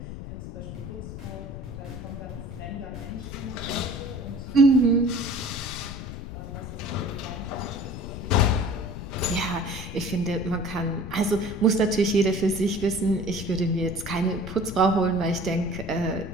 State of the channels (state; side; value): noise; left; rumble, 9 dB below the sound